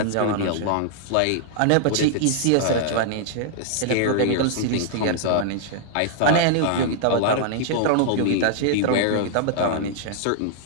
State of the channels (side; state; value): both; different; correlation -0.01